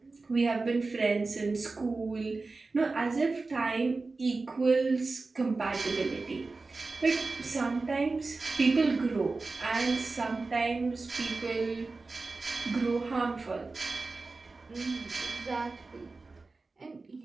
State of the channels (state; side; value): quieter; left; 3.7 dB